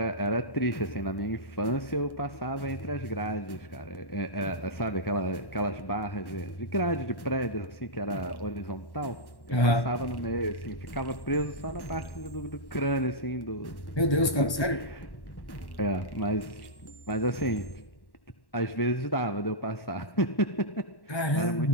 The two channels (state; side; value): late; right; 1.1 ms